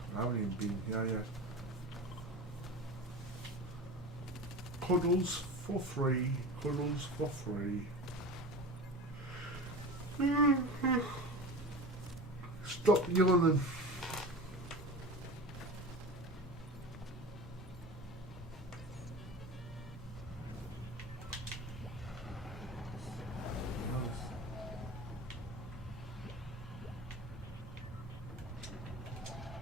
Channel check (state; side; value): normal; both; correlation 0.32